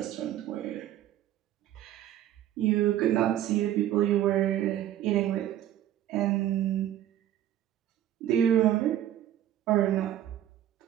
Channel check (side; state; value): left; quieter; 11.8 dB